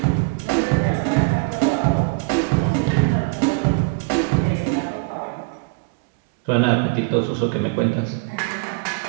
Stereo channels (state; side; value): quieter; left; 30.7 dB